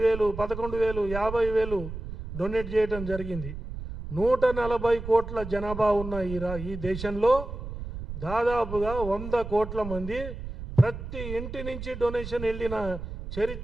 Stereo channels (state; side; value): noise; right; rumble, 9 dB below the sound